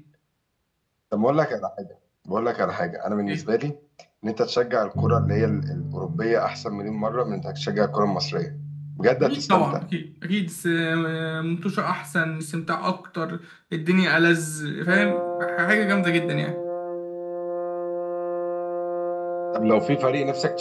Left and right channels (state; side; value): identical; both; correlation 1.00